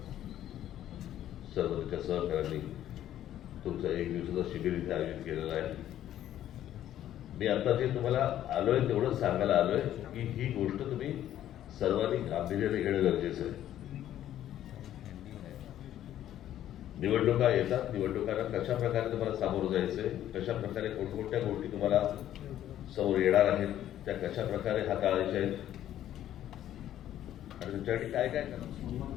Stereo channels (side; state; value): right; quieter; 11.9 dB